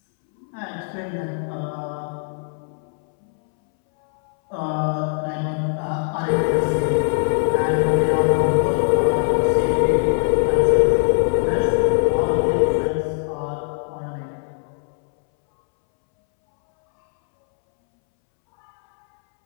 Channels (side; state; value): right; silent; 65 dB below the other